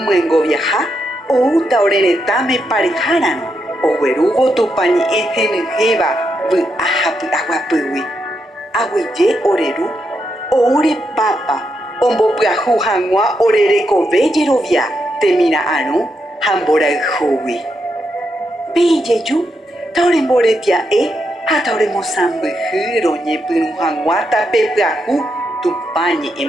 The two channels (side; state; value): both; normal; correlation 0.82